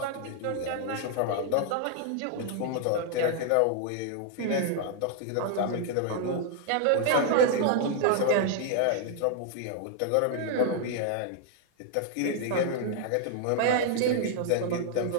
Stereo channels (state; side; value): different; both; correlation -0.01